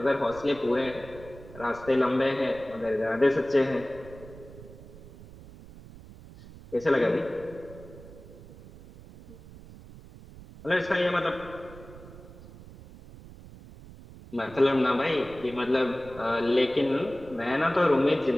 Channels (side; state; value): right; noise; rumble, 18 dB below the sound